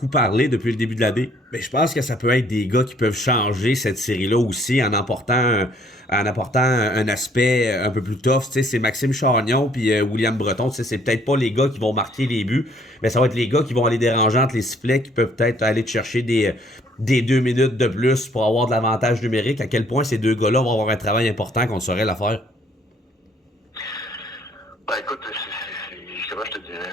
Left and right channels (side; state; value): both; normal; correlation 0.63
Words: parlé depuis le début de l'année. Mais je pense que ça peut être des gars qui peuvent changer cette série-là aussi en apportant un aspect un peu plus tough. Tu sais, c'est Maxime Chagnon puis William Breton. Tu sais, c'est peut-être pas les gars qui vont marquer les buts, mais ça va être les gars qui vont aller déranger entre les sifflets, qui peuvent peut-être aller te chercher des 2 minutes de plus pour avoir de l'avantage numérique. À quel point ces deux gars-là vont avoir un travail important qu'on saurait la faire? Ben écoute, comment je te dirais,